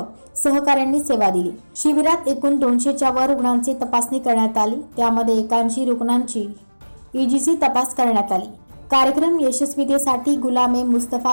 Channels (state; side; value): inverted; both; correlation -1.00